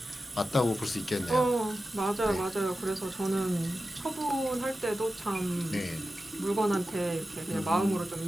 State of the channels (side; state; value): both; normal; correlation 0.93